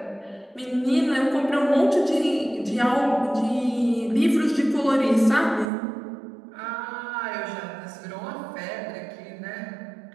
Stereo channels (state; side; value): drops out; left; at 5.7 s